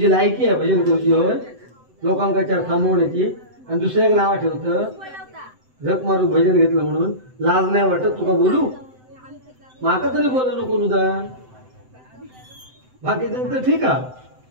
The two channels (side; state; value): left; late; 7.8 ms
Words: लायकी आहे भजन तुझी होय लोकांका 4 थांबवण्याची आणि दुसऱ्या नावा ठेवतं झक मारू भजन घेतलं म्हणून लाज नाही वाटत तुका बोलू माका तरी बोला नको नुदा बाकी तर ठीक आहे